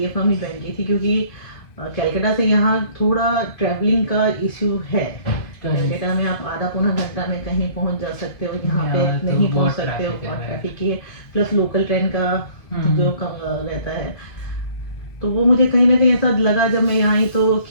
फर्म ही ज्वाइन की थी, क्योंकि कलकत्ता से यहाँ थोड़ा ट्रैवलिंग का इश्यू है। कलकत्ता में आप आधा पौना घंटा में कहीं पहुँच जा सकते हो, यहाँ पे नहीं पहुँच सकते हो, और ट्रैफिक की प्लस लोकल ट्रेन का जो कम रहता है। तो वो मुझे कहीं ना कहीं ऐसा लगा जब मैं यहाँ आई तो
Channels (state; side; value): late; right; 2.5 ms